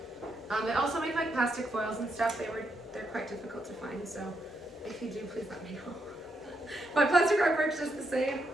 They also make like plastic foils and stuff. They're quite difficult to find, so if you do, please let me know. But plastic rug works just the same.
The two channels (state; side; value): normal; both; correlation 0.80